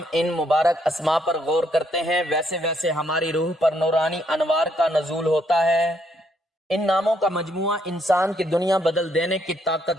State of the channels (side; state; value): both; normal; correlation 0.72